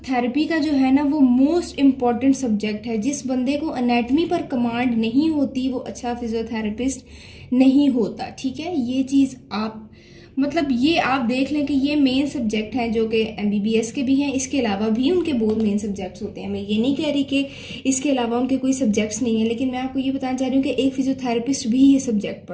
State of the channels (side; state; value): both; identical; correlation 1.00